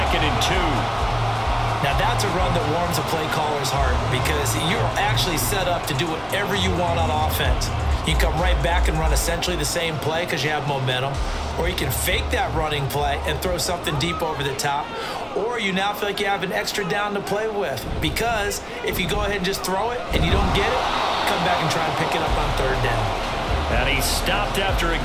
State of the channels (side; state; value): both; identical; correlation 1.00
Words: and 2. Now that's a run that warms a play caller's heart because you're actually set up to do whatever you want on offense. You can come right back and run essentially the same play because you have momentum, or you can fake that running play and throw something deep over the top, or you now feel like you have an extra down to play with because if you go ahead and just throw it and you don't get it, come back and try and pick it up on third down. And he stopped after a